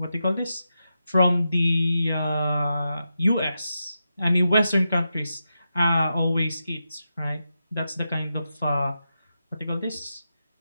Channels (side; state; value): both; inverted; correlation -0.88